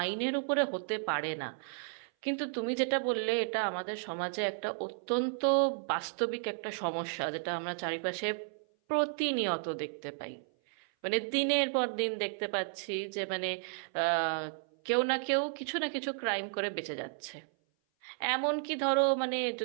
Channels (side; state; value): left; silent; 56 dB below the other